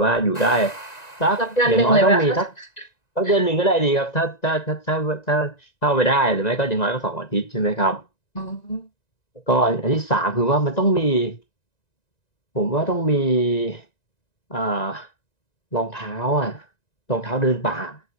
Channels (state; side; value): late; right; 1.9 ms